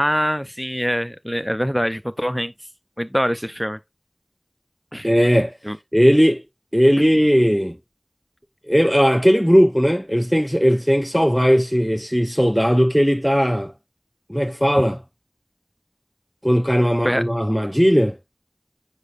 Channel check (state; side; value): identical; both; correlation 1.00